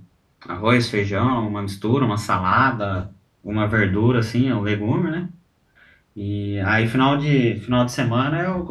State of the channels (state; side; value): identical; both; correlation 1.00